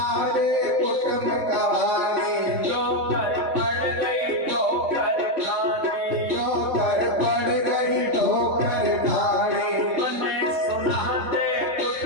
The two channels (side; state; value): left; late; 3.5 ms